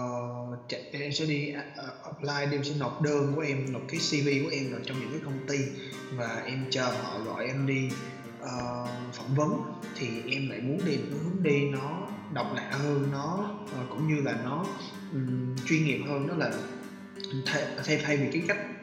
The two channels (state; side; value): identical; both; correlation 1.00